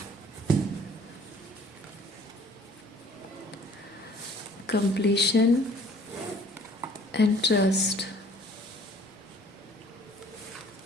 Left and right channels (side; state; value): both; normal; correlation 0.55